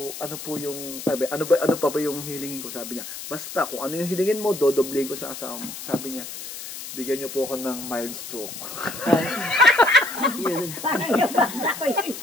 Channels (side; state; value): left; noise; hiss, 10 dB below the sound